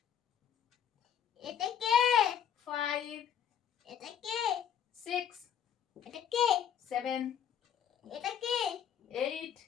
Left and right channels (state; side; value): quieter; right; 8.9 dB